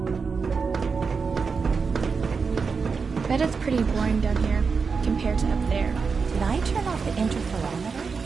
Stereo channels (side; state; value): left; quieter; 5.2 dB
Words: Bet it's pretty boring down here, compared to up there. Did I turn off the interferometer?